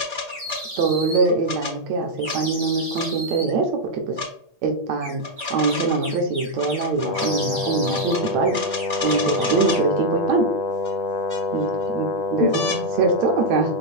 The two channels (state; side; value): late; left; 8.6 ms